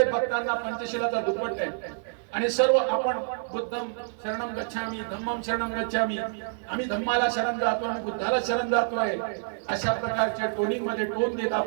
बघताना पंचशिलाचा दुपट्टा आहे आणि सर्व आपण बुद्धम शरणम गच्छामी, धम्मम शरणम गच्छामी, आम्ही धम्माला शरण जातो, आम्ही बुद्धाला शरण जातोय. अशा प्रकारच्या टोनिंग मध्ये टोन देत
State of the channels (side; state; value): left; silent; digital silence